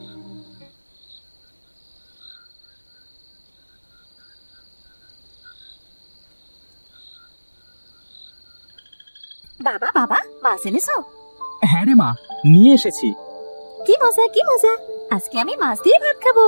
বাবা বাবা, মাছ এনেছো? হ্যাঁ রে মা, নিয়ে এসেছি। কি মজা, কি মজা! আজকে আমি মাছ দিয়ে ভাত খাবো,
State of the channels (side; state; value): both; inverted; correlation -1.00